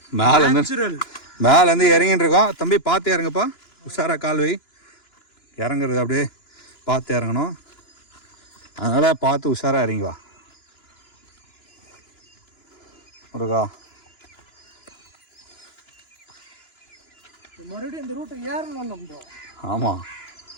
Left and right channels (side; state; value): right; late; 2.9 ms